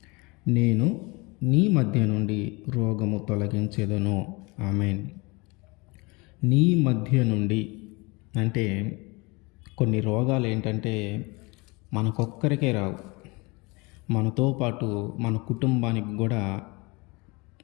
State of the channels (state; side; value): quieter; right; 26.4 dB